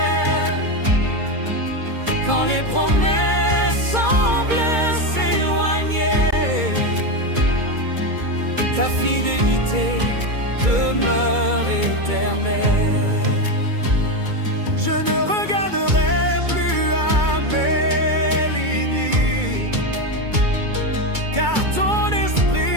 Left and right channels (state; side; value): late; left; 2.3 ms